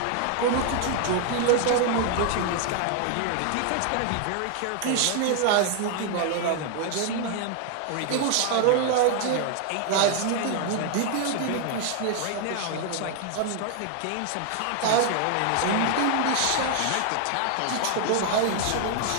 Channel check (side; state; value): both; different; correlation 0.00